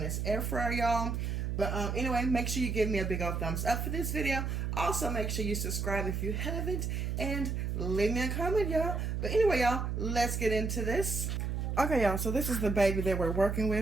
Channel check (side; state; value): right; noise; hum, 1 dB below the sound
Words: this air fryer, y'all. But anyway, make sure you give me a big old thumbs up for this video. Also, make sure you subscribe if you haven't. And leave me a comment, y'all. But anyway, y'all, let's get into this. Okay, y'all, so this is the baby that we're working